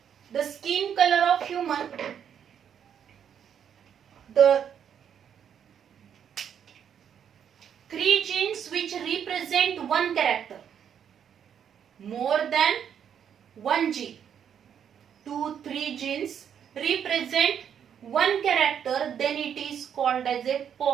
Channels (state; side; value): quieter; left; 8.5 dB